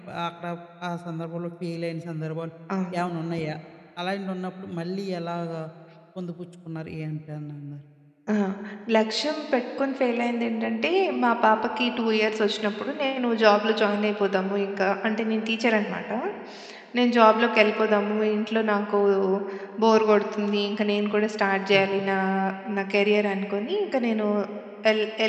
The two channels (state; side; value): identical; both; correlation 1.00